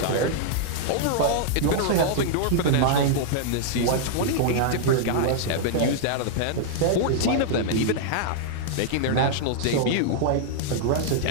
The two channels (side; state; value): both; different; correlation -0.01